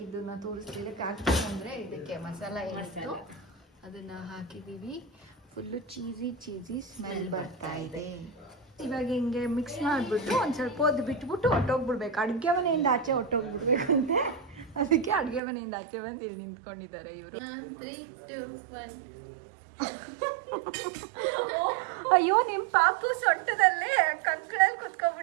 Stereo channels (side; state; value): left; drops out; at 15.4 s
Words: ತೋರಿಸ್ತಿದ್ದೆ. ಖಾರದ ಪುಡಿ ಅಂದರೆ ಇದಕ್ಕೆ ಮಸಾಲ ಏನಿತ್ತು ಅದನ್ನು ಹಾಕಿದ್ದೀವಿ. ಫುಲ್ಲು ಚೀಸಿ ಸ್ಮೆಲ್ ಬರ್ತಾ ಇದೆ. ಇವಾಗ ಹಿಂಗೆ ಮಿಕ್ಸ್ ಮಾಡಿಬಿಟ್ಟು ಒಂದು ಸ್ವಲ್ಪ ಹೊತ್ತು ಬಿಟ್ಬಿಟ್ಟು ಹೊಟ್ಟೋಗ್ಬಿಡ್ಬೇಕು. ಅಡುಗೆ ಮನೆಯಿಂದ ಆಚೆ ಹೊಟ್ಟೋಗ್ಬಿಡ್ಬೇಕಂತೆ, ಅದಕ್ಕೆ ಅಡುಗೆ ಮನೆಯಿಂದ ಆಚೆ ಬಂದು ಇಲ್ಲಿ ನಿಂತ್ಕೊಂಡಿದ್ದಾರೆ ಇವರು. 3, 2, 1. ಅಯ್ಯೋ, ನಿಮ್ಮ ಪಾಪು ಸೊಂಟದಲ್ಲೇ ಕಂಕಳಲ್ಲಿ